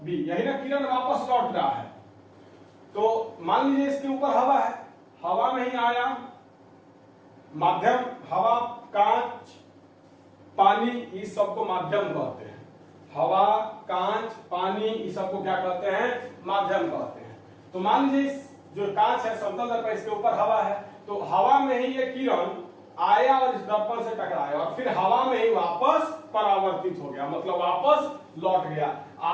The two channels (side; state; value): both; identical; correlation 1.00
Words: यही ना किरण वापस लौट रहा है। तो मान लीजिए इसके ऊपर हवा है, हवा में ही आया, माध्यम, हवा, कांच, पानी, इस सबको माध्यम कहते हैं। हवा, कांच, पानी, इस सबको क्या कहते हैं? माध्यम कहते हैं। तो मान लीजिए जो कांच है समतल दर्पण, इसके ऊपर हवा है, तो हवा में ही ये किरण आया और इस दर्पण से टकराया और फिर हवा में ही वापस परावर्तित हो गया, मतलब वापस लौट गया।